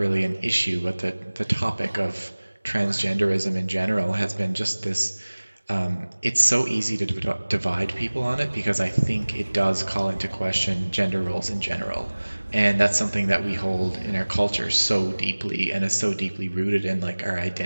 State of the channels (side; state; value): both; inverted; correlation -1.00